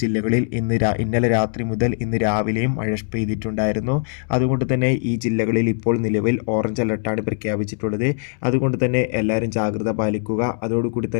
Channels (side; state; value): right; silent; 65 dB below the other